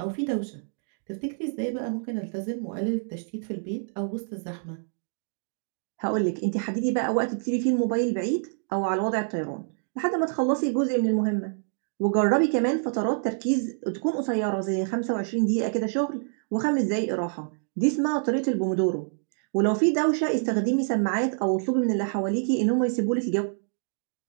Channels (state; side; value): silent; left; digital silence